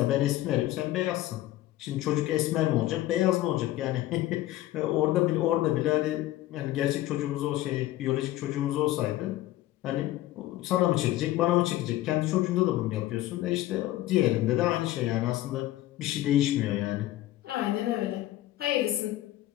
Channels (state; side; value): quieter; right; 15.2 dB